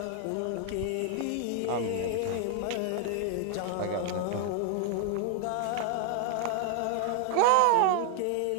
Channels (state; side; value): different; both; correlation 0.00